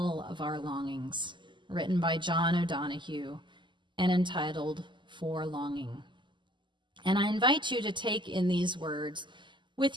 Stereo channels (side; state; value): left; late; 0.23 ms